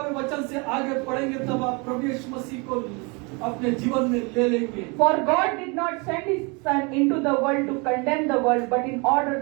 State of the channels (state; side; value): quieter; left; 30.1 dB